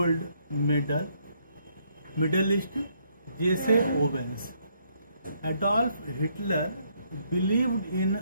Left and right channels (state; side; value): inverted; both; correlation -0.71